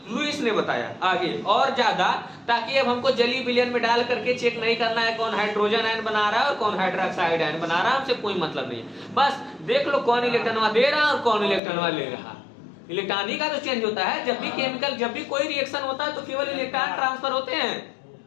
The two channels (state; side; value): drops out; right; at 11.6 s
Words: लुईस ने बताया आगे और ज्यादा, ताकि अब हमको जली विलयन में डाल करके चेक नहीं करना है कौन हाइड्रोजन आयन बना रहा है और कौन हाइड्रोक्साइड आयन बना रहा है, हमसे कोई मतलब नहीं है। बस देख लो कौन इलेक्ट्रॉन दे रहा है और कौन इलेक्ट्रॉन ले रहा। इलेक्ट्रॉन ही का तो चेंज होता है। जब भी केमिकल, जब भी कोई रिएक्शन होता है तो केवल इलेक्ट्रॉन ट्रांसफर होते हैं,